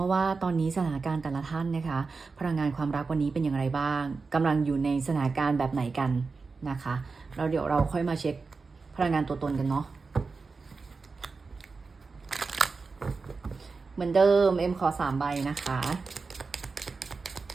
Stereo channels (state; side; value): quieter; left; 4.4 dB